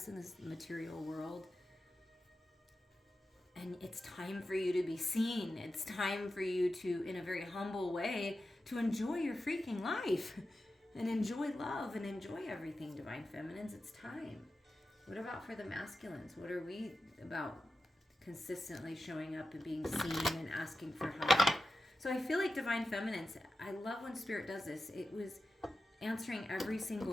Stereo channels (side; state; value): both; normal; correlation 0.92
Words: in this material world. And it's time for you to be seen. It's time for you to, in a very humble way, to enjoy your freaking life and enjoy love and enjoy everything, Divine Feminines. It's time. What about for the masculines? What are we about? Consistently showing up and being seen and asking for help. So I feel like Divine Feminines, I love when Spirit does this. It was answering every